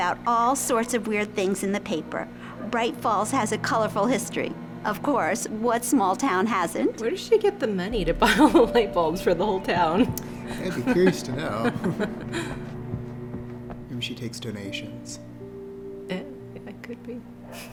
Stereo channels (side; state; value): both; identical; correlation 1.00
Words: all sorts of weird things in the paper. Bright Falls has a colorful history. Of course, what small town hasn't? Where does she get the money to buy all the light bulbs for the whole town? I'd be curious to know. Maybe she takes donations. Yeah, it could be.